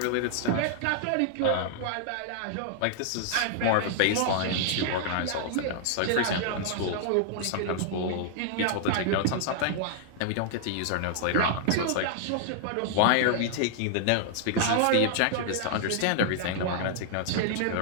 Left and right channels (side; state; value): both; different; correlation -0.01